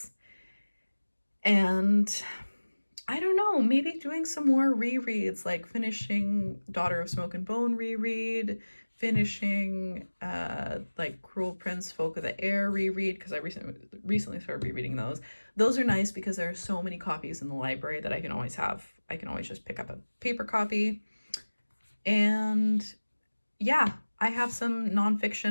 And I don't know, maybe doing some more rereads, like finishing Daughter of Smoke and Bone reread, finishing like Cruel Prince, Folk of the Air reread, because I recently started rereading those. Those are nice because there are so many copies in the library that I can always have. I can always just pick up a paper copy. And yeah, I have some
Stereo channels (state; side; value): inverted; both; correlation -1.00